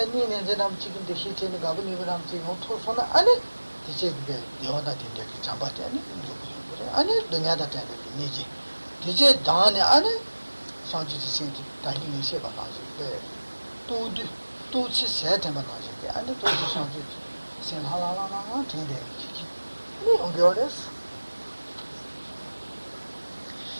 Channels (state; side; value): inverted; both; correlation -1.00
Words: 제가 지금도 시체는 가분이 그럼 지금 토소나 아니 이제 그게 여다 된데 잡았대 아니 그래 아니 등야다 된데 니지 이제 다네 아니 상지 진짜 다니는 시 봐가지고 tout ce c'est un bagage et à tout changer c'est la mais on regarde